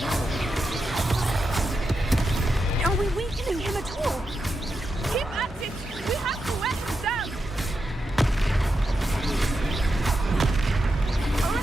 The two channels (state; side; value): normal; both; correlation 0.87